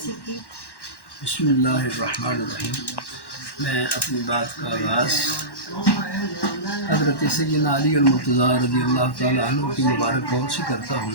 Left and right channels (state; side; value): late; right; 1.1 ms